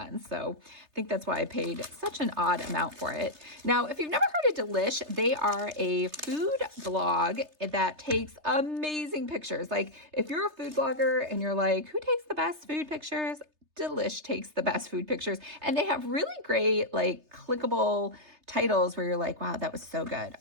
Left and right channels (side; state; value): left; late; 3.3 ms